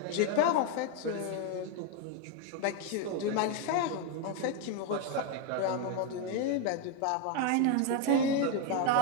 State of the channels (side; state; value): both; different; correlation 0.01